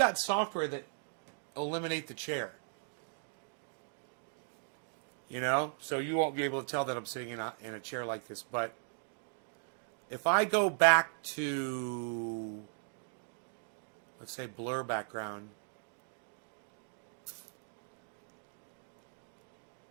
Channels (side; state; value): left; silent; digital silence